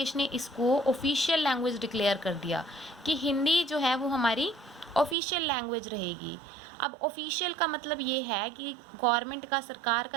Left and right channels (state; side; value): drops out; left; at 5.2 s